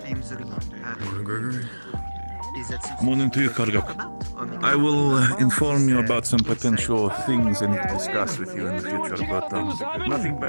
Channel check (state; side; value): inverted; both; correlation -1.00